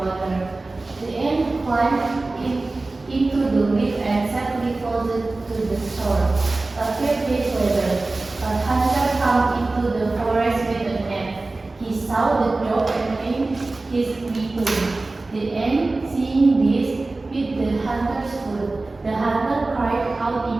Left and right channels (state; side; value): quieter; left; 3.2 dB